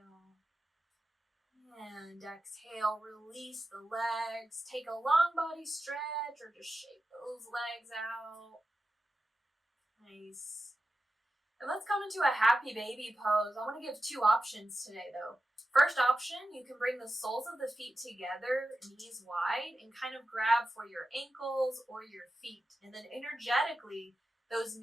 And exhale, release the legs. Take a long body stretch or just shake those legs out. Nice. And let's come into a happy baby pose. I want to give two options today though. First option, you can bring the soles of the feet together, knees wide, and kind of grab for your ankles or your feet. And then energetically, those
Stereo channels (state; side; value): normal; both; correlation 0.92